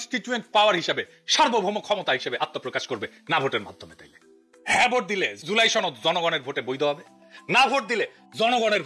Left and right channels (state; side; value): identical; both; correlation 1.00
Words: পাওয়ার হিসেবে সার্বভৌম ক্ষমতা হিসেবে আত্মপ্রকাশ করবে না ভোটের মাধ্যমে। তাইলে হ্যাঁ ভোট দিলে জুলাই সনদ জনগণের ভোটে বৈধ হবে, না ভোট দিলে জনগণের